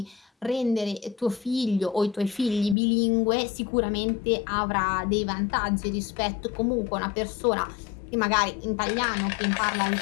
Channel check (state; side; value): drops out; right; at 2.8 s